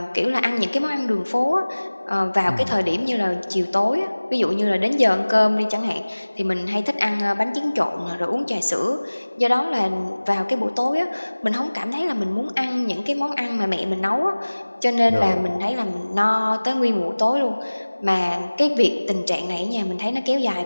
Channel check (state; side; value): inverted; both; correlation -1.00